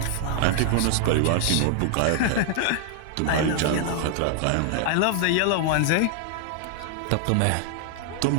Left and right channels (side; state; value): both; different; correlation 0.00